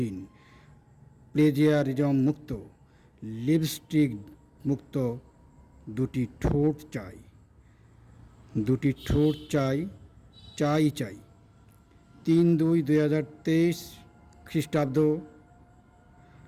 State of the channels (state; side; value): identical; both; correlation 1.00